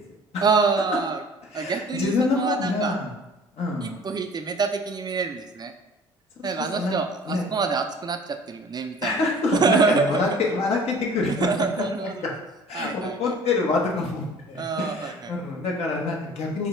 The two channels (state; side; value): normal; both; correlation 0.48